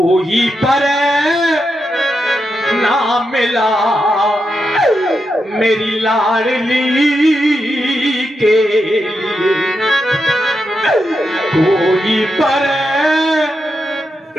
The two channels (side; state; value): both; normal; correlation 0.85